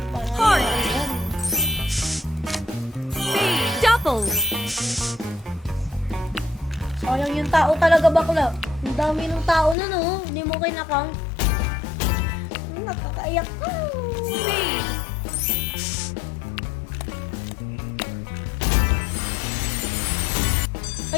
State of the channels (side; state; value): right; drops out; at 9.8 s